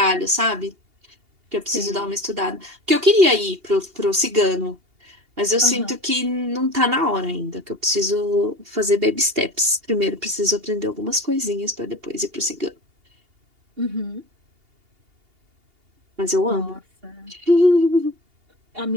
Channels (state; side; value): late; left; 2.8 ms